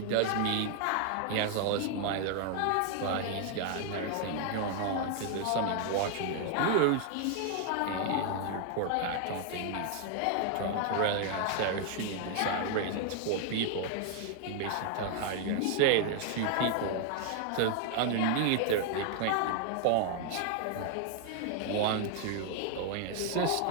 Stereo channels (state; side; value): different; both; correlation 0.00